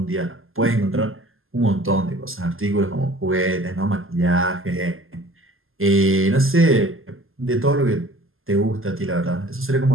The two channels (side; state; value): left; late; 0.60 ms